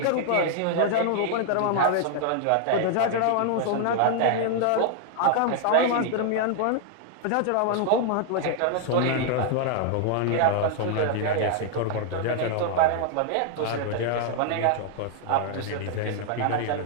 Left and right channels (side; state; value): both; different; correlation 0.00